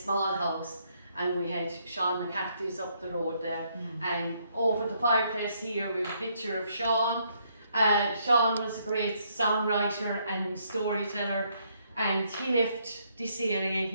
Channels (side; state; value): both; inverted; correlation -0.72